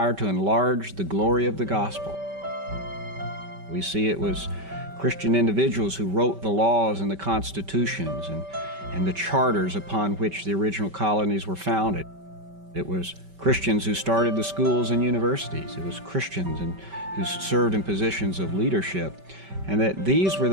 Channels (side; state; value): left; late; 5.2 ms